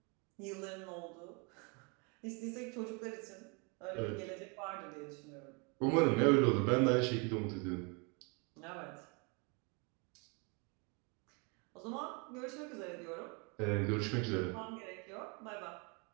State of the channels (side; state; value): left; quieter; 32.5 dB